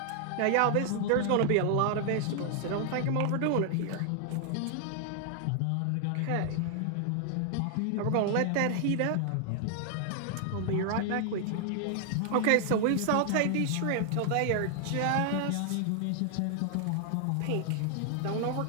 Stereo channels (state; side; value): different; both; correlation 0.00